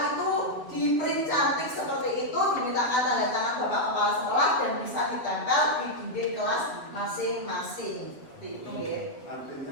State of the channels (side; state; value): right; late; 7.2 ms